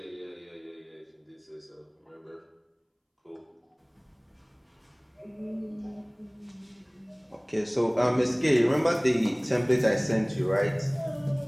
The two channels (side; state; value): both; identical; correlation 1.00